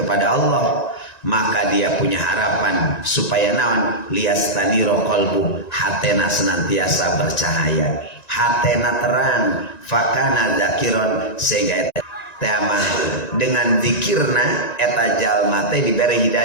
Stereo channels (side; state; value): right; late; 1.9 ms